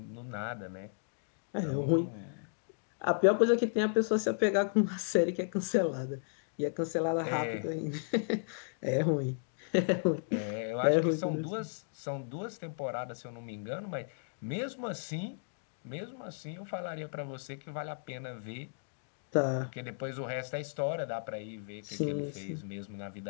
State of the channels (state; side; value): silent; right; digital silence